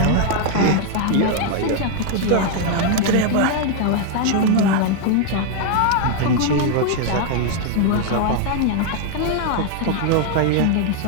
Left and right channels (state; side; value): different; both; correlation 0.00